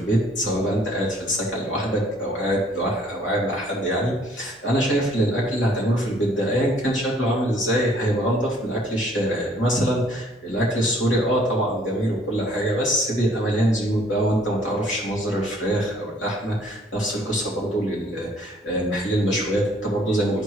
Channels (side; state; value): both; normal; correlation 0.60